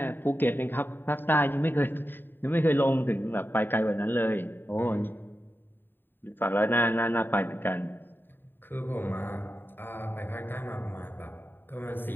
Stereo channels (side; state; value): right; late; 0.095 ms